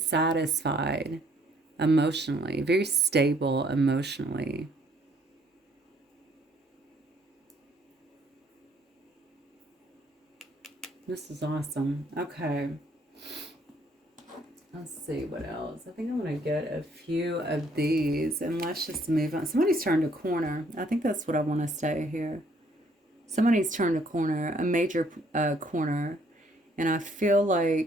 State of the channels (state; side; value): normal; both; correlation 0.65